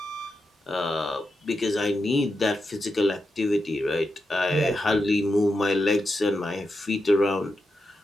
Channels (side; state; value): both; normal; correlation 0.87